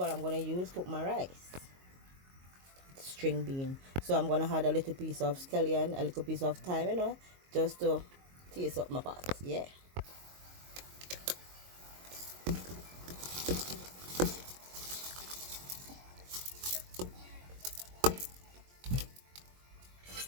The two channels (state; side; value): late; left; 22 ms